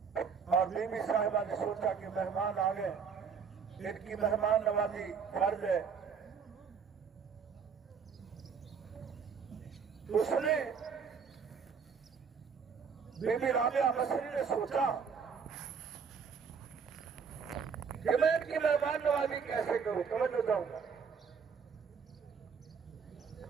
और बीबी साहिबा ने सोचा कि मेहमान आ गए, इनकी मेहमान नवाजी फर्ज है। उसने बीबी राबिया बसरी ने सोचा कि मैं इनकी मेहमान नवाजी कैसे करूं। समझ जाऊंगा,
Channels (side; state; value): left; quieter; 6.2 dB